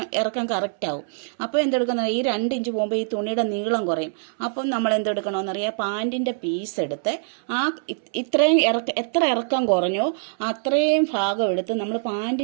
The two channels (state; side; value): silent; left; 63 dB below the other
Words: ഇറക്കം കറക്റ്റ് ആവും. അപ്പോൾ എന്തെടുക്കുന്ന, ഈ 2 ഇഞ്ച് പോകുമ്പോൾ ഈ തുണിയുടെ നീളം കുറയും. അപ്പം നമ്മൾ എന്തെടുക്കണമെന്നറിയാം, പാൻറ്റിൻ്റെ പീസ് എടുത്ത് ആ ഇത്രയും എത്ര ഇറക്കം കുറഞ്ഞോ അത്രയും ഭാഗം എടുത്ത് നമ്മൾ